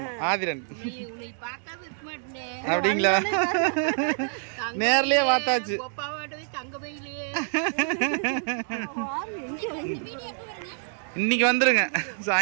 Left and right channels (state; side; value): silent; left; 60 dB below the other